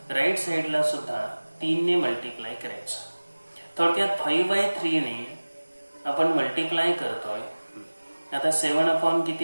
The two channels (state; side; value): inverted; both; correlation -1.00